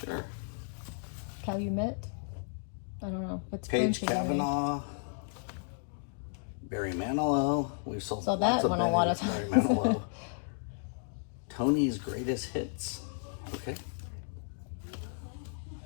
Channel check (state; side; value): silent; right; digital silence